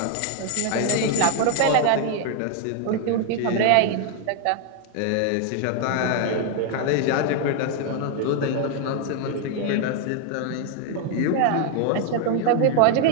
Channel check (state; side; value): different; both; correlation 0.00